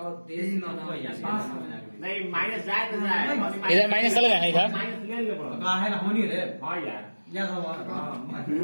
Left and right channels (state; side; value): inverted; both; correlation -1.00